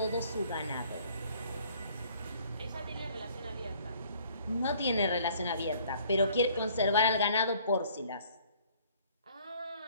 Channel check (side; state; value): both; inverted; correlation -0.58